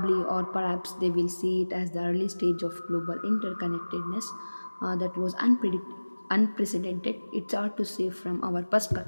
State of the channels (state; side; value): inverted; both; correlation -1.00